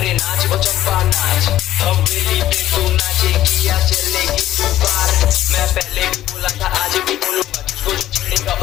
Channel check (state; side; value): quieter; right; 13.5 dB